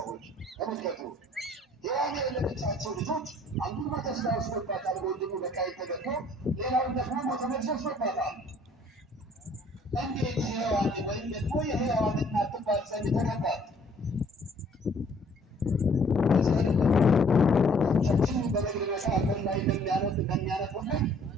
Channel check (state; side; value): normal; both; correlation 0.59